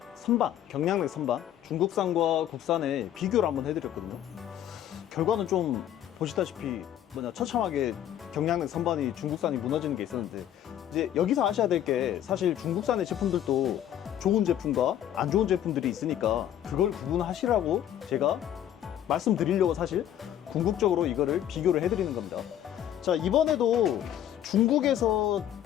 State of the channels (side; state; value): right; quieter; 11.0 dB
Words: 선반, 경량렉 선반, 중국산과 국산의 비교를 한번 해드렸거든요. 결과는 좀 보시다시피 처참하게 경량렉 선반이 중국산이 무너지는 게 있었는데, 이제 여기서 아셔야 될 게 사실 중국산의 제품들도 좋은 제품과 안 좋은 제품들이 있으니까 그걸 구분하시라고 제가 말씀드리려고 사실 궁극적으로 이거를 비교를 해드리는 겁니다. 자, 이번에도 중국에서